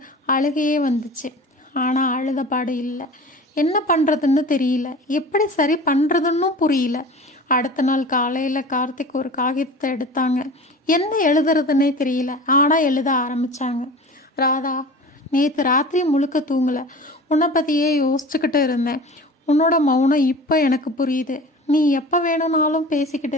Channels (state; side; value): normal; both; correlation 0.38